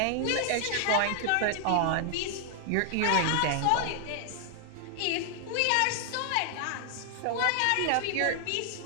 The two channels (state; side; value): different; both; correlation 0.00